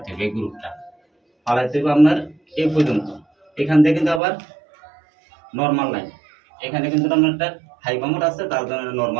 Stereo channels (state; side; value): drops out; left; at 4.2 s